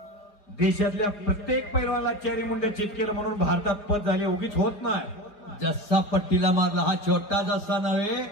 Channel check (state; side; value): late; right; 4.7 ms